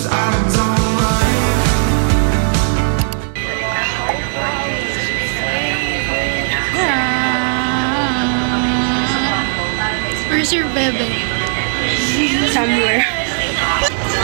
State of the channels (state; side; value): silent; left; digital silence